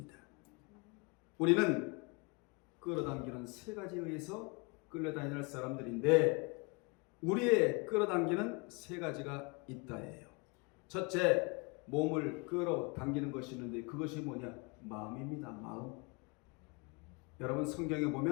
우리는 끌어당기는 세 가지에 의해서 끌려다니는 사람들인데 우리의 끌어당기는 세 가지가 있다예요. 첫째, 몸을 끌어당기는 것이 있는데 그것이 뭐냐? 마음입니다. 마음. 여러분, 성경에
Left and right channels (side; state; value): right; quieter; 30.0 dB